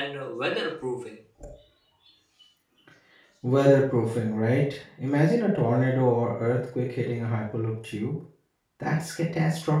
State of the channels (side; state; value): both; identical; correlation 1.00